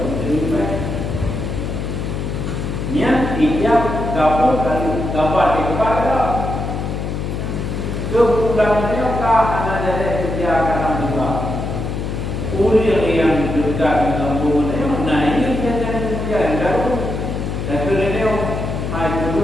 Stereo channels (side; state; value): left; noise; hum, 3 dB below the sound